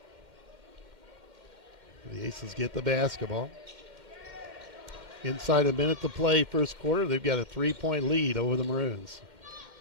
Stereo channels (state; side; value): late; left; 2.1 ms